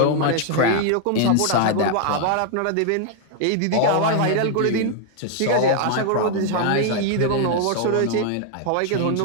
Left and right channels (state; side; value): different; both; correlation 0.00